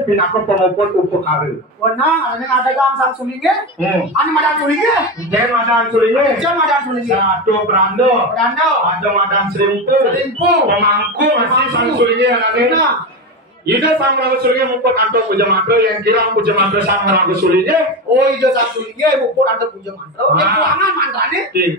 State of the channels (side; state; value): both; normal; correlation 0.18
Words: pinako penguput upekare wenang ada gangsang sulinge ane madan sulinge jangan madan sulinya satu berando ada madan serimpu pemangku masih sang sulinya ada ida sang meraga sulinya muput anto puja mantra yang kira puja mantra sang meraga sulinya ida sang sulinya muput anto puja mantra yang kuangan mantranya